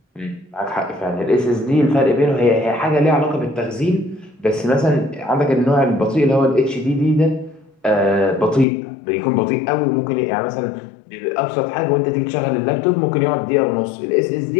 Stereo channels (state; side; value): drops out; right; at 8.7 s